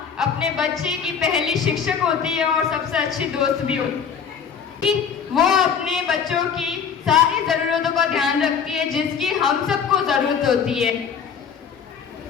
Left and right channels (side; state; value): right; quieter; 6.9 dB